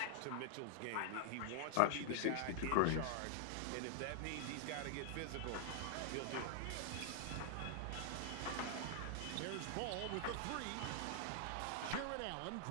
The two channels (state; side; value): different; both; correlation 0.00